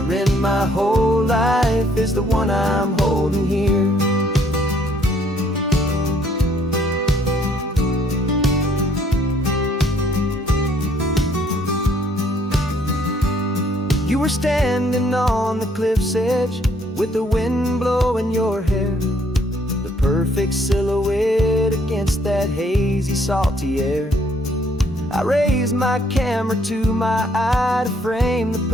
in my whole life is the one I'm holding here. You were standing on the cliff's edge with the wind blowing your hair, the perfect silhouette against that hazy, salty air. I raised my camera to my eye to frame the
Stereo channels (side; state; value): both; normal; correlation 0.65